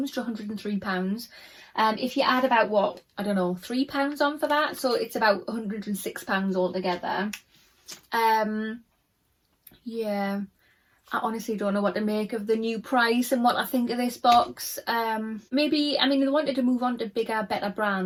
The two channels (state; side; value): identical; both; correlation 1.00